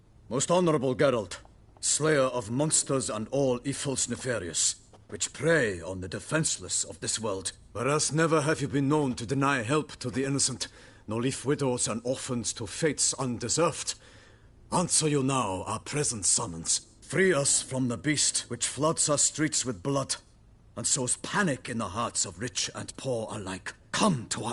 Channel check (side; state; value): both; identical; correlation 1.00